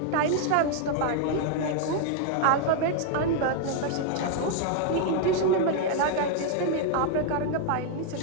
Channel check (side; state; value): both; different; correlation 0.00